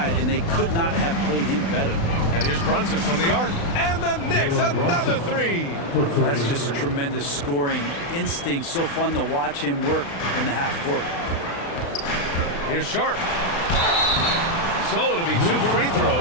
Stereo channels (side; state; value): right; late; 35 ms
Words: and they could not have played him better. And here's Brunson from the arc. And the Knicks, another 3. That's just tremendous scoring instinct. So fun to watch him work in the half court. Here's Sharp. So it'll be 2 free